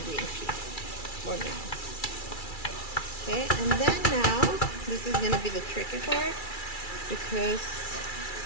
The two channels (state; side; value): late; right; 2.3 ms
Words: green peas for now. Okay, and then now, this is gonna be the tricky part because